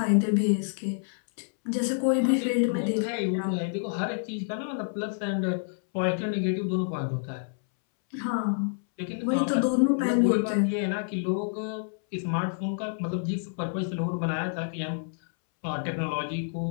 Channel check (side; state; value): right; silent; 59 dB below the other